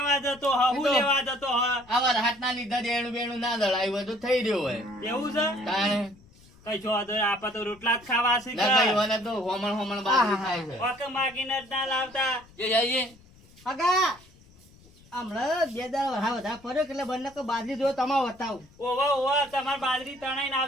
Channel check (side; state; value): left; noise; rumble, 26 dB below the sound